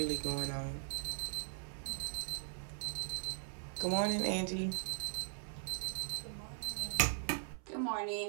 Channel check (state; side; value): silent; left; 51 dB below the other